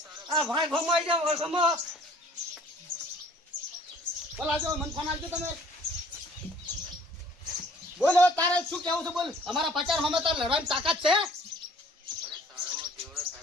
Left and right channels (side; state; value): both; normal; correlation 0.55